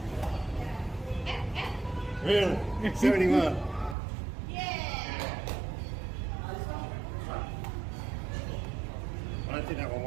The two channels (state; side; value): drops out; left; at 4.0 s